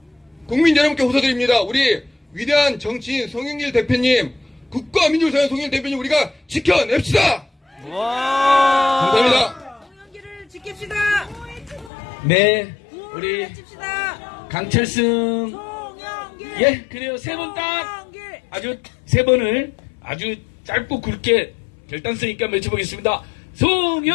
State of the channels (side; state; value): right; drops out; at 11.9 s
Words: 국민 여러분께 호소드립니다. 우리 위대한 정치인 송영길 대표님 국가 민주사회 송영길 대표님 우리가 지켜냅시다. 와. 감사합니다. 송영길을 지킵시다. 네, 우리 우리 지킵시다. 강철승 송영길. 예 그래요. 세 번 딱 송영길. 아주 세 번을 아주 짧고 굵게 결단성 있게 한번 외쳐보겠습니다.